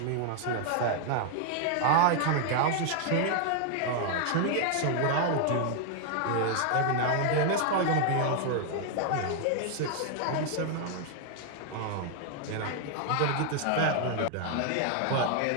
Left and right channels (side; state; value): both; different; correlation 0.00